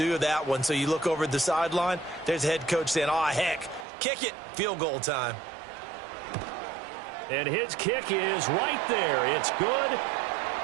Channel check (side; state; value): left; drops out; at 3.9 s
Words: that one. So you look over at the sideline. There's the head coach saying, oh, heck, kick it. Field goal time. And his kick is right there. It's good.